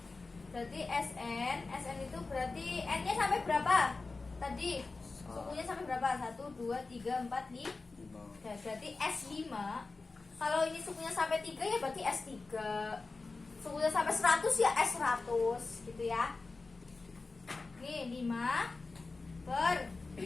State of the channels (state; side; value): quieter; right; 3.8 dB